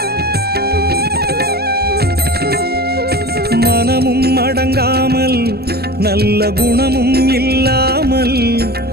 மனமும் அடங்காமல் நல்ல குணமும் இல்லாமல்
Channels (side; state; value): left; late; 0.46 ms